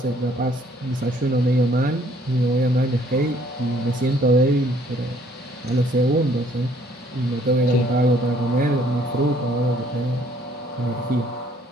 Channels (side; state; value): both; normal; correlation 0.62